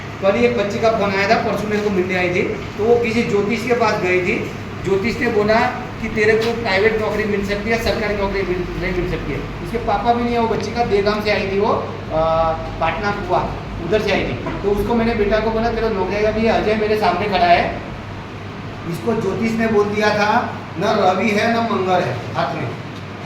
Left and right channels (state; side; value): identical; both; correlation 1.00